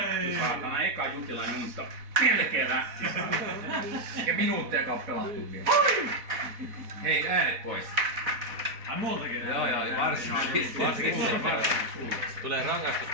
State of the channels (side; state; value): left; late; 4.1 ms